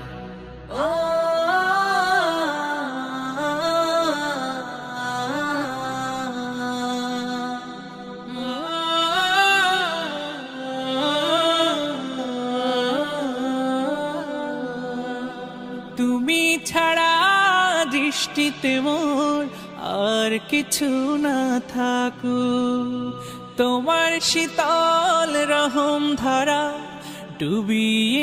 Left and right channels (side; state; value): both; identical; correlation 1.00